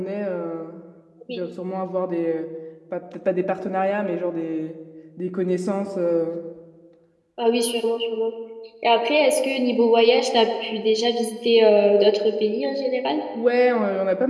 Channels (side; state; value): both; identical; correlation 1.00